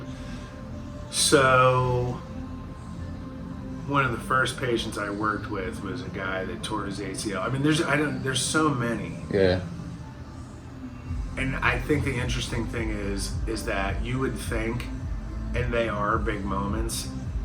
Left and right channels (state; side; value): identical; both; correlation 1.00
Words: So, one of the first patients I worked with was a guy that tore his ACL. I mean, there's so many. Yeah. And I think the interesting thing is that you would think, and they are big moments,